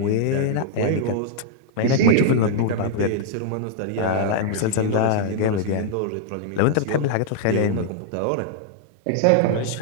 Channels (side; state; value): both; different; correlation -0.01